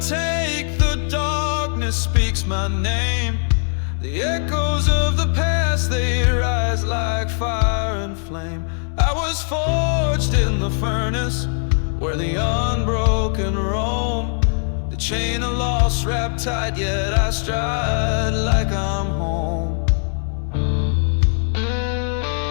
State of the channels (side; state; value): right; silent; 65 dB below the other